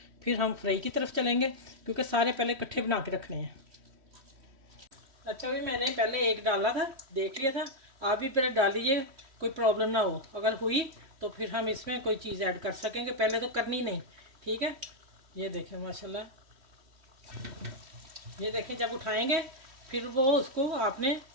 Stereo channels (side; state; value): left; late; 3.1 ms